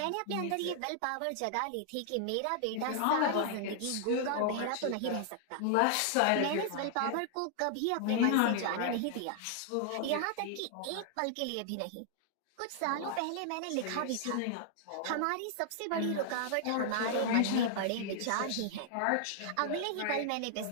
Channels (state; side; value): different; both; correlation -0.01